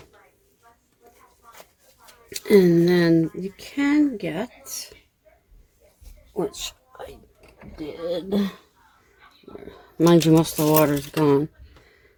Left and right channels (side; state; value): both; identical; correlation 1.00